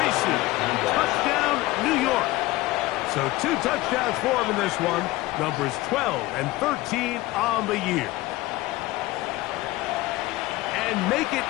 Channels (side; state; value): right; quieter; 18.9 dB